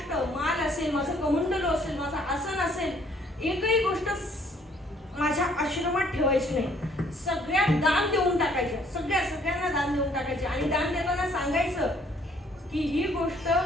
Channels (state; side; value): normal; both; correlation 0.63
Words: माल असेल, माझं कमंडलो असेल, माझा आसन असेल, एकही गोष्ट माझ्या आश्रमात ठेवायची नाही. सगळ्या दान देऊन टाकायच्या, सगळ्यांना दान देऊन टाकायचे. आणि दान देताना सांगायचं की ही गोष्ट